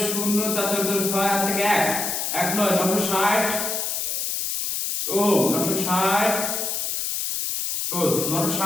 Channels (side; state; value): left; noise; hiss, 1 dB below the sound